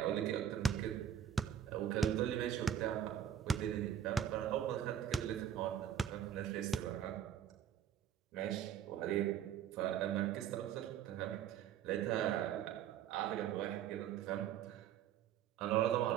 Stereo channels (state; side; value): quieter; left; 9.5 dB